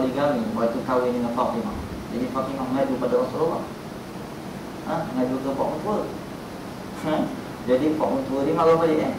waktu kahwin dengan Fatimah. Jadi Fatimah mengadu pada Rasulullah, mengadu ke Pak Mentua. Jadi Pak Mentua dia marah balik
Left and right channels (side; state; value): both; identical; correlation 1.00